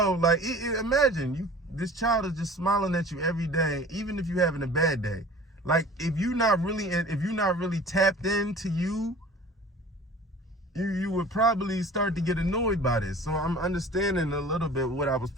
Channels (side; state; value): both; normal; correlation 0.44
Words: Like, imagine this child is just smiling at you every day, even if you're having a bad day. Like, if you're not really tapped into you would probably start to get annoyed by this. So I'm understanding a little bit what I was